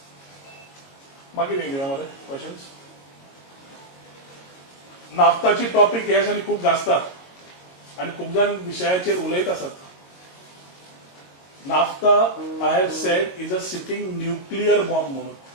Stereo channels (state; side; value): late; right; 22 ms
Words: मागीर घेऊया मरे क्वेश्चन्स. नाफ्ताची टॉपिक ह्या दिसांनी खूप गाजतात आणि खूप जण विशयाचेर उलयत आसात. Naphtha I have said is a sitting nuclear bomb म्हणून.